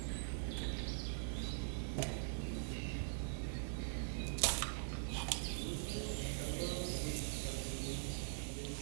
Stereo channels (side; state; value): left; silent; digital silence